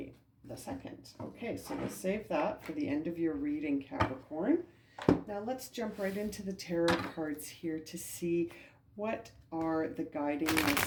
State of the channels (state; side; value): identical; both; correlation 1.00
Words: the 2nd. Okay, so we'll save that for the end of your reading, Capricorn. Now let's jump right into the tarot cards here to see what are the guiding